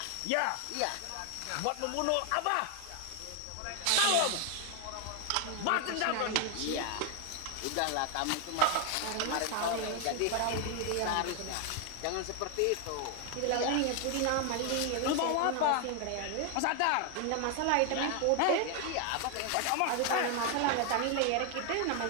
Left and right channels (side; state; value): both; different; correlation 0.01